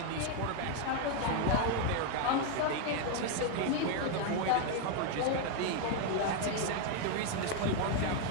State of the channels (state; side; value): different; both; correlation 0.00